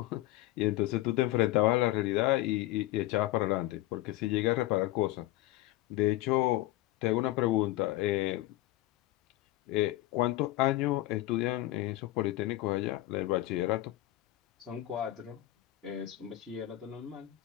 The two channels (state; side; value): quieter; right; 16.2 dB